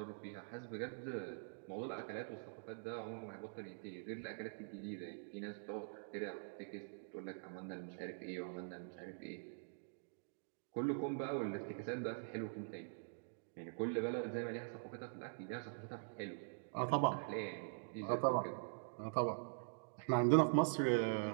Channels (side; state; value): left; silent; digital silence